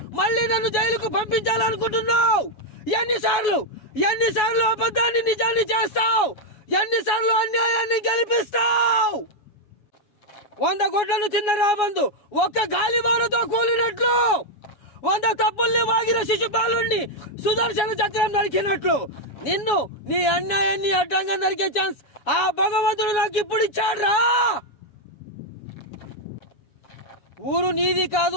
మళ్ళీ నన్ను జైలుకు పంపించాలనుకుంటున్నావు? ఎన్నిసార్లు అబద్ధాన్ని నిజాన్ని చేస్తావు? ఎన్నిసార్లు అన్యాయాన్ని గెలిపిస్తావు? 100 గొడ్లను తిన్న రాబందు ఒక్క గాలివానతో కూలినట్లు, 100 తప్పుల్ని వాగిన శిశుపాలుణ్ణి సుదర్శన చక్రం నరికినట్లు నిన్ను నీ అన్యాయాన్ని అడ్డంగా నరికే ఛాన్స్ ఆ భగవంతుడు నాకు ఇప్పుడు ఇచ్చాడ్రా. ఊరు నీది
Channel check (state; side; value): late; right; 7.1 ms